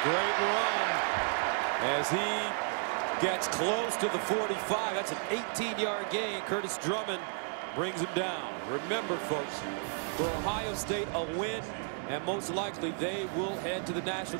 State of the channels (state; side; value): silent; left; 56 dB below the other